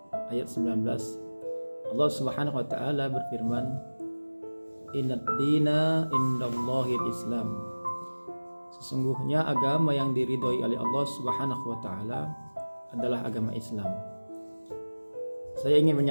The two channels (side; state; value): both; inverted; correlation -1.00